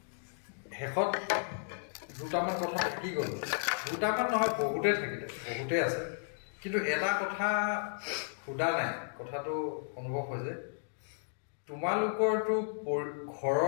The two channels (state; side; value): silent; right; digital silence